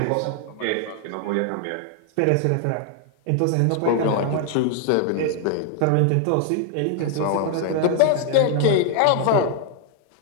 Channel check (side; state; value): both; different; correlation 0.00